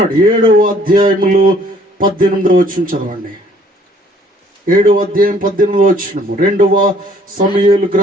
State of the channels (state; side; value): normal; both; correlation 0.60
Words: 7వ అధ్యాయములో 18వ వచనం చదవండి. 7వ అధ్యాయం 18వ వచనం. 2వ సమూయేలు